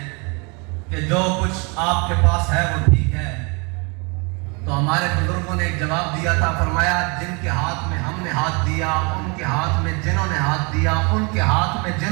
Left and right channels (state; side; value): quieter; left; 31.0 dB